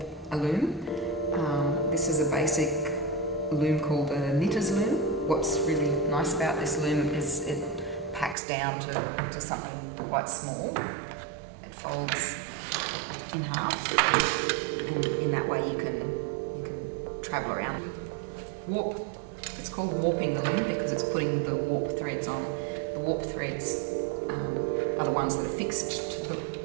a loom. This is a basic loom called a knitter's loom. What's really nice about this loom is it packs down to something quite small. It folds in half, and in that way you can travel around. Warp. It's called warping the loom because it's putting the warp threads on. The warp threads are the ones that are fixed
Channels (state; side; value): drops out; left; at 8.3 s